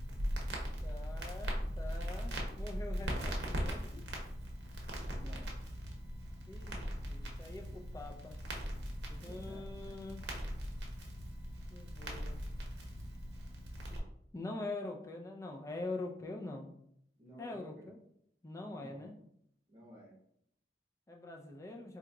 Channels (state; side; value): normal; both; correlation 0.83